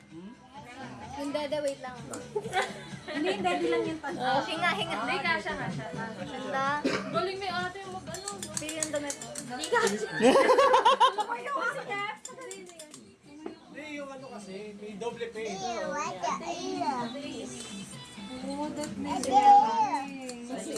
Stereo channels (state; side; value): identical; both; correlation 1.00